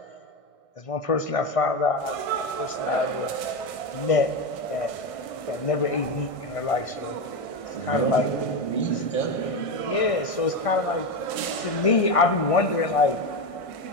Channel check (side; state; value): right; late; 1.6 ms